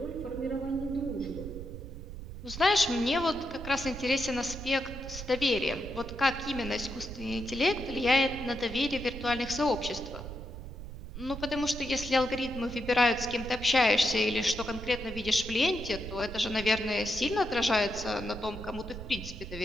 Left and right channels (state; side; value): noise; right; rumble, 10 dB below the sound